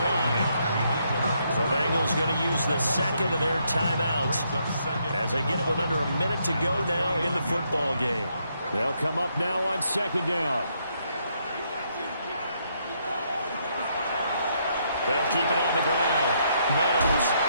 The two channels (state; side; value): inverted; both; correlation -0.75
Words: line. The Bengals going to use the 2nd of their timeouts as they get it with under a minute to go now in the football game. They'll come up now on 2nd down. They'll keep it on the ground. Meadows.